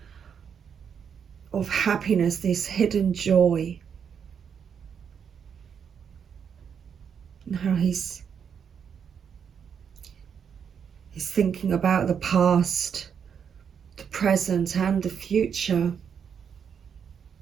happiness, this hidden joy, and how he's thinking about the past, the present and the future.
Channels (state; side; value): quieter; left; 7.3 dB